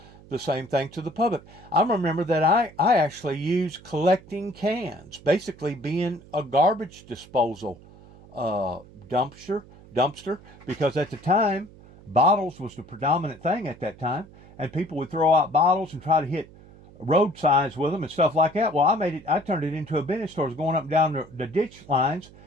the same thing to the public. I remember that I actually used collecting cans, basically being a garbage disposal dumpster, because at the time, bottles was the predominant thing at that time, and people would throw out bottles and try to hit road signs with them and stuff like that. Well, I turned it into a business store, going up and down the ditch lines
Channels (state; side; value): noise; right; hum, 22 dB below the sound